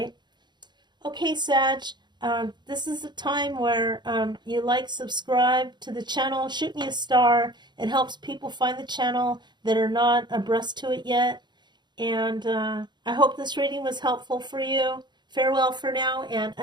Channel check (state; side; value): late; left; 0.21 ms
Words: Okay, Sag, this is a time where you like, subscribe to the channel, shoot me a star. It helps people find the channel that are not abreast to it yet. And I hope this reading was helpful for you. Farewell for now, and